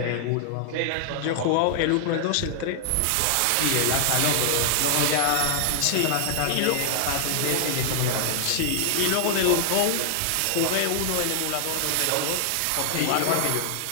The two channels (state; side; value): different; both; correlation 0.00